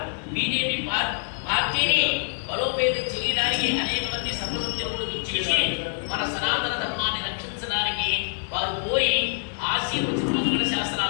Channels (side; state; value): right; silent; 61 dB below the other